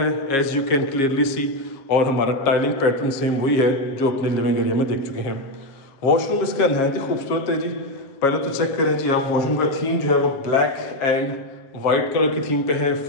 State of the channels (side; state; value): right; late; 7.3 ms